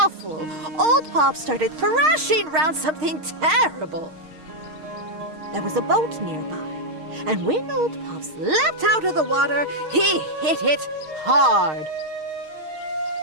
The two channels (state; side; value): late; left; 6.5 ms